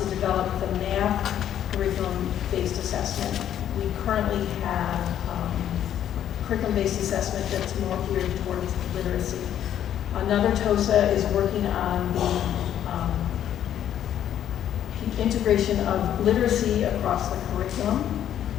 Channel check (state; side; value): quieter; right; 10.6 dB